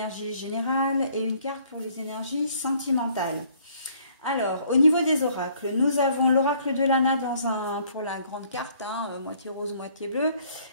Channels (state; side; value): inverted; both; correlation -0.61